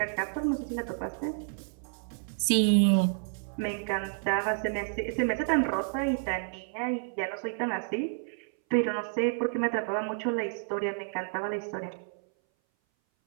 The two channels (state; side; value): silent; left; 58 dB below the other